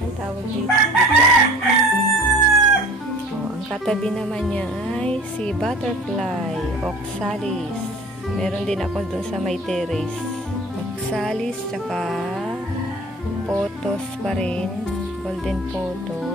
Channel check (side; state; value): both; normal; correlation 0.45